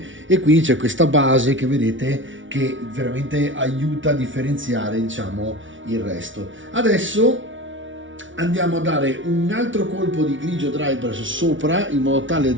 e quindi c'è questa base che vedete che veramente aiuta a differenziare, diciamo, il resto. Adesso andiamo a dare un altro colpo di grigio dry brush sopra, in modo tale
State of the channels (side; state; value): left; late; 0.56 ms